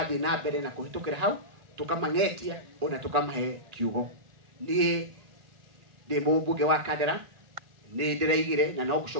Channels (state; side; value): late; left; 1.8 ms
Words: na mbere na kũhĩtũkĩra hau, tũkamang'etia ona tũkamahe kiugo. Niĩ ndĩ mũmbunge wa Kandara, nĩ ndĩraigire na no